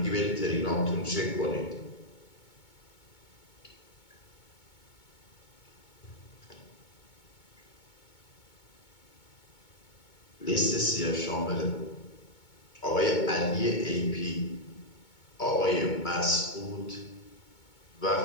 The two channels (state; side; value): late; right; 2.2 ms